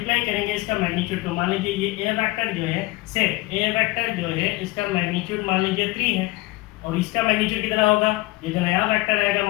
करेंगे इसका मैग्नीट्यूड को। मान लीजिए ये a वेक्टर जो है से a वेक्टर जो है इसका मैग्नीट्यूड मान लीजिए 3 है और इसका मैग्नीट्यूड कितना होगा? ये जो नया वेक्टर आएगा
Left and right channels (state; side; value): quieter; right; 20.2 dB